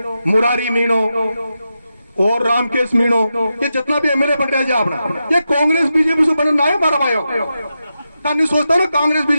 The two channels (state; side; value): inverted; both; correlation -0.89